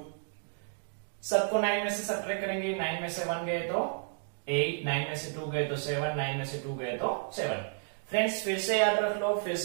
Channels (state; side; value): silent; left; 57 dB below the other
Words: सबको 9 में से सब्ट्रैक्ट करेंगे, 9 में से 1 गए तो 8, 9 में से 2 गए तो 7, 9 में से 2 गए तो 7। फ्रेंड्स फिर से याद रख लो, फिर